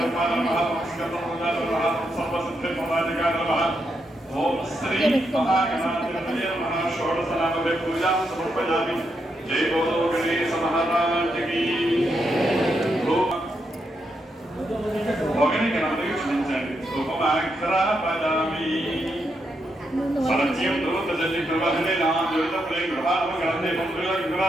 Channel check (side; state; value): both; normal; correlation 0.82